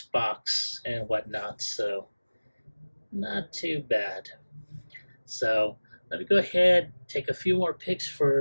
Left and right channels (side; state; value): both; inverted; correlation -1.00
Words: box and whatnot. So not too bad. So let me go ahead, take a few more pics